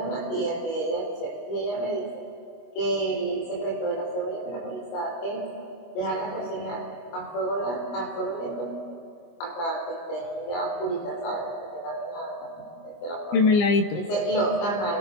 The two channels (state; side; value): late; right; 24 ms